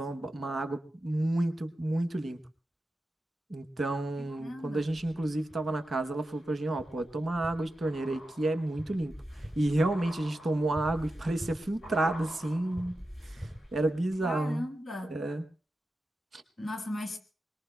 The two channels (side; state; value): both; normal; correlation 0.91